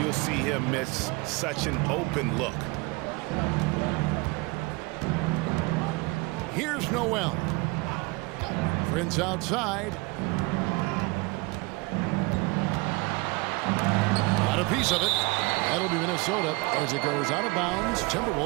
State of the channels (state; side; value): quieter; left; 25.9 dB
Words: you'll see him miss such an open look. Here's Noel. Prince outside. Got a piece of it. That'll be Minnesota as it goes out of bounds.